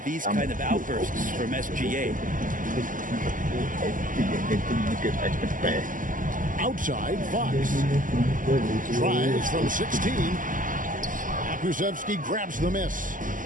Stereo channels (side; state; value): left; late; 0.38 ms